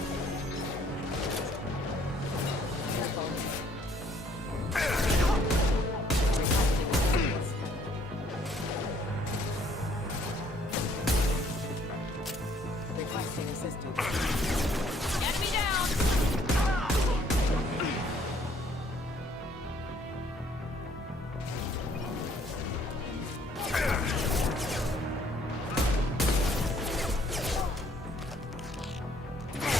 Requesting assistance. Enemy down!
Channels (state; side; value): normal; both; correlation 0.63